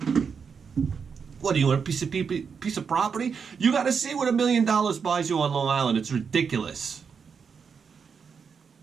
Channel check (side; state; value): left; quieter; 6.1 dB